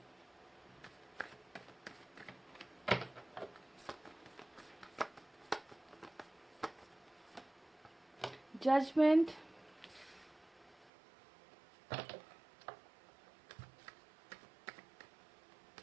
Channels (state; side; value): drops out; left; at 10.9 s